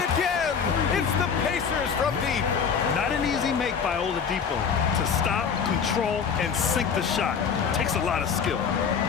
again, it's the Pacers from deep. Not an easy make by Oladipo. To stop, control, and sink the shot. Takes a lot of skill.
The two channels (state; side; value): quieter; right; 6.6 dB